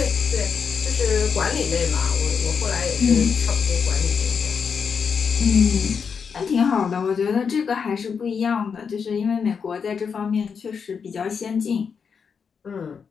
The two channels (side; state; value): right; quieter; 6.2 dB